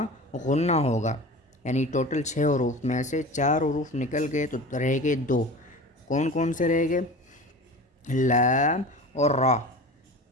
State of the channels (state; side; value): normal; both; correlation 0.35